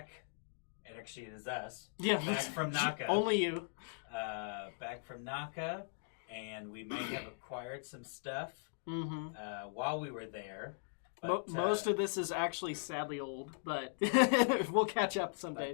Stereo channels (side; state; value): right; silent; digital silence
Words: and actually it is us, back from Naka. Only you. Back from Naka, and we may have acquired some stuff Mm-hmm. while we were there. But, Most of this is actually sadly old, but we'll catch up